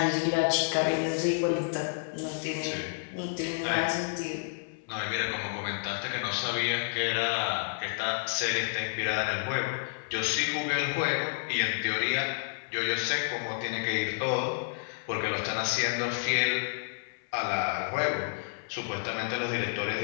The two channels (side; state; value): right; silent; 58 dB below the other